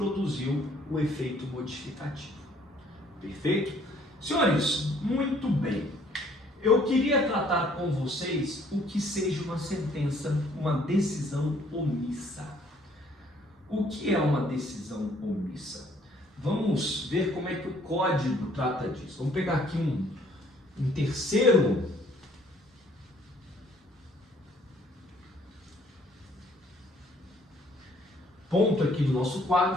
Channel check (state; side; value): normal; both; correlation 0.61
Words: o efeito modificativo. Perfeito? Senhores, muito bem. Eu queria tratar com vocês o que seja uma sentença, uma decisão omissa. O que é uma decisão omissa? Vamos ver como é que o código trata disso. Vamos pegar aqui um terceiro ponto aqui do nosso